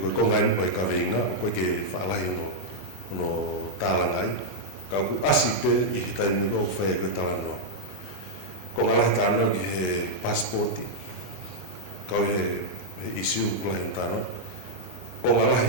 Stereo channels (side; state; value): both; normal; correlation -0.04